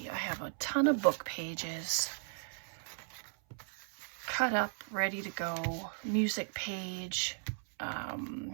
a ton of book pages cut up, ready to go. Music page. I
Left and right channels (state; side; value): silent; left; 54 dB below the other